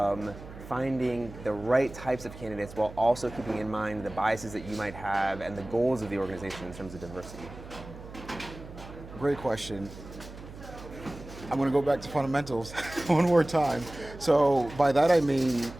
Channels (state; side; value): noise; right; hum, 15 dB below the sound